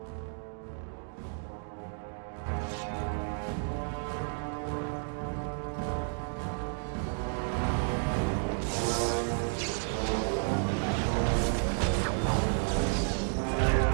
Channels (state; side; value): silent; left; 57 dB below the other